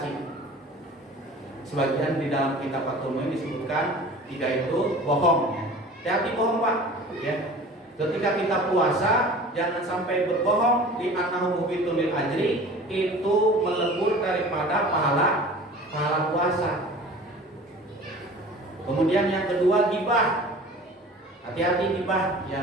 Sebagian di dalam kitab Fathul Muin disebutkan 3 itu bohong. Hati bohong Pak. Ya. Ketika kita puasa jangan sampai berbohong, di annahu mubitun lil ajri, itu melebur daripada pahala puasa. Kemudian yang kedua gibah. Hati-hati gibah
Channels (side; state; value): both; normal; correlation 0.42